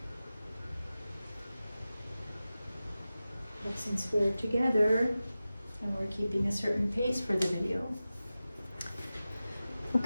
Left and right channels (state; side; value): inverted; both; correlation -0.95